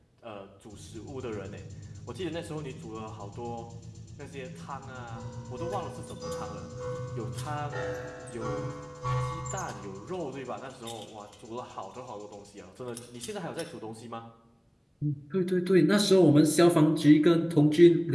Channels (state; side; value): identical; both; correlation 1.00